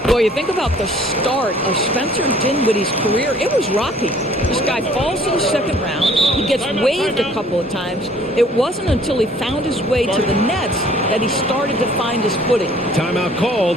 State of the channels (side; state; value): both; normal; correlation 0.56